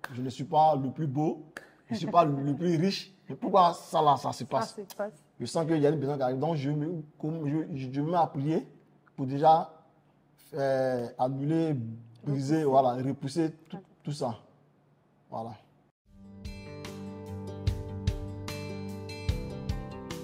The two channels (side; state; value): both; identical; correlation 1.00